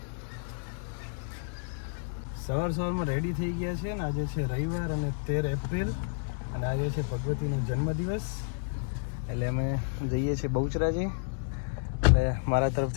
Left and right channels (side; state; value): right; silent; digital silence